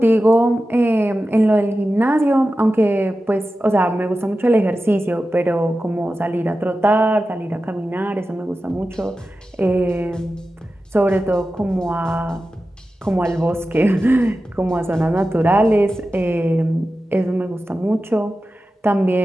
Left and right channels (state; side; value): normal; both; correlation 0.93